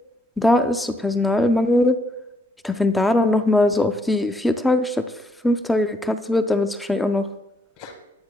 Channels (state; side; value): normal; both; correlation 0.74